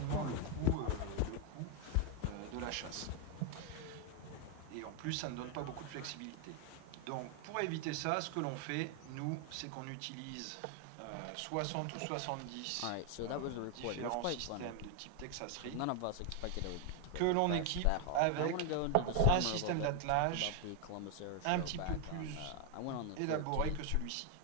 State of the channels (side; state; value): both; different; correlation 0.01